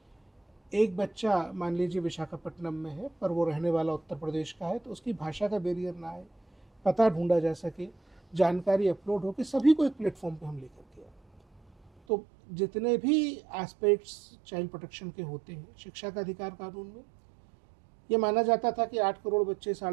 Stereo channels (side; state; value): left; drops out; at 11.9 s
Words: एक बच्चा मान लीजिए विशाखापट्टनम में है पर वो रहने वाला उत्तर प्रदेश का है, तो उसकी भाषा का बैरियर ना आए, पता ढूंढा जा सके, जानकारी अपलोड हो के सभी को एक प्लेटफॉर्म पे हम लेकर के आए। तो जितने भी एस्पेक्ट्स चाइल्ड प्रोटेक्शन के होते हैं, शिक्षा का अधिकार कानून में ये माना जाता था कि 8 करोड़ बच्चे,